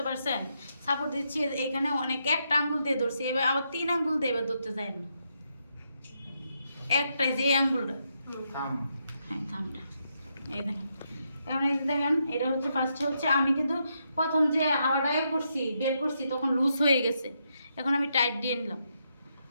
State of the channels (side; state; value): both; inverted; correlation -0.80